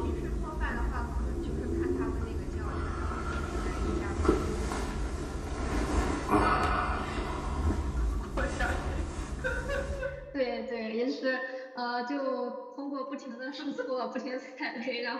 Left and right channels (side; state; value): both; identical; correlation 1.00